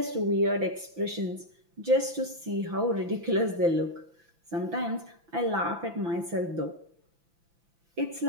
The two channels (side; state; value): left; late; 5.9 ms